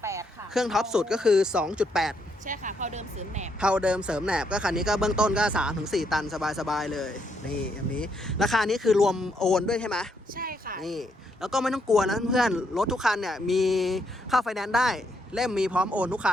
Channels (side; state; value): both; normal; correlation 0.76